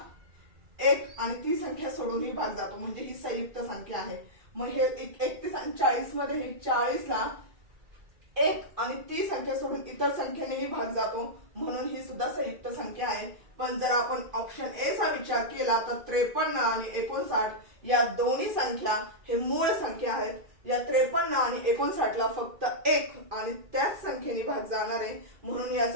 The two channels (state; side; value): late; left; 2.3 ms